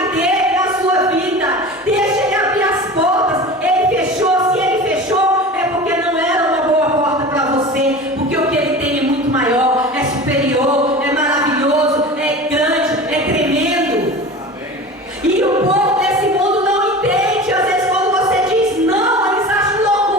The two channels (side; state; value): both; normal; correlation 0.34